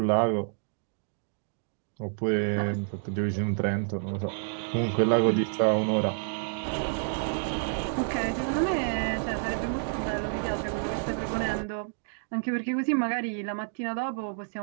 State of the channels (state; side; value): silent; left; digital silence